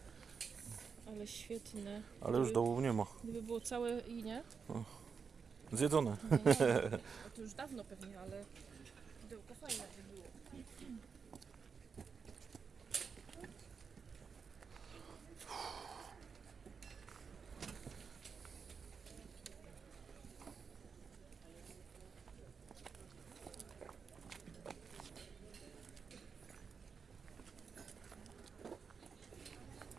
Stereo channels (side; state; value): left; quieter; 5.8 dB